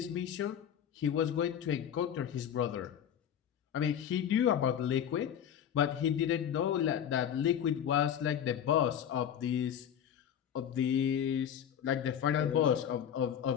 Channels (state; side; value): quieter; right; 9.2 dB